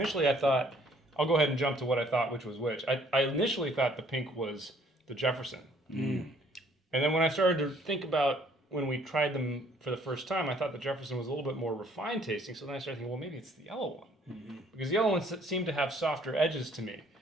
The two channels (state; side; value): normal; both; correlation 0.61